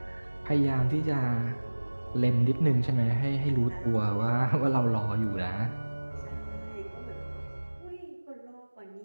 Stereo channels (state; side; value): inverted; both; correlation -1.00